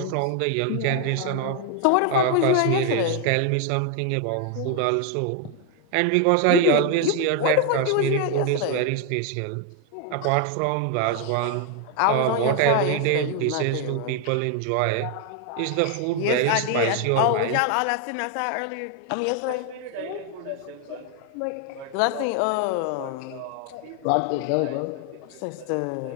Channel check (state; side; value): different; both; correlation 0.01